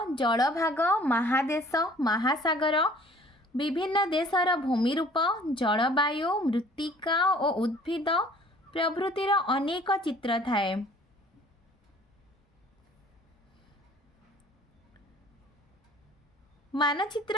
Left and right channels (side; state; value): both; normal; correlation 0.53